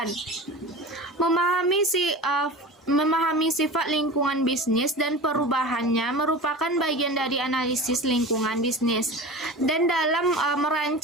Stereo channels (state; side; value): normal; both; correlation 0.33